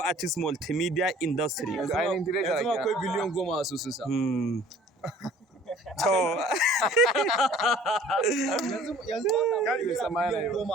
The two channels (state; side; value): normal; both; correlation 0.51